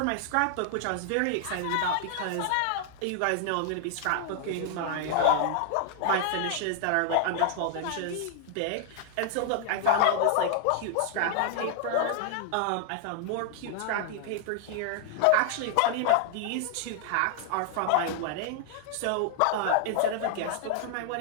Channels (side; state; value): both; different; correlation -0.01